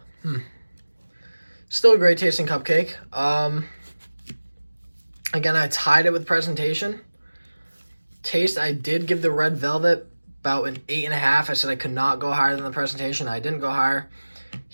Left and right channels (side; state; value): both; inverted; correlation -1.00